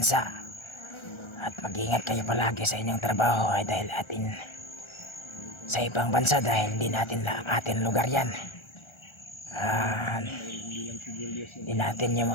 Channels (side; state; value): right; late; 1.3 ms